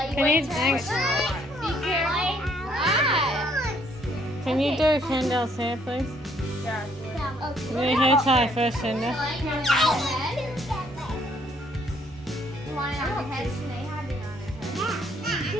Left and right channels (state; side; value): normal; both; correlation 0.66